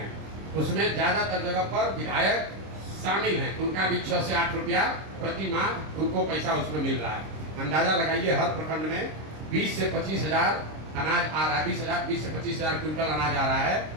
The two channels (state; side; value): late; left; 26 ms